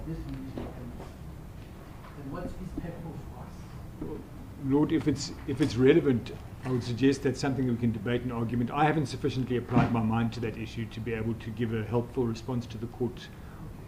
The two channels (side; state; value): both; identical; correlation 1.00